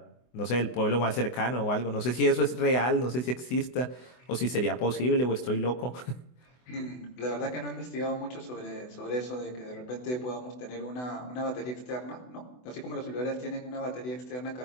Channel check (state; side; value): late; right; 24 ms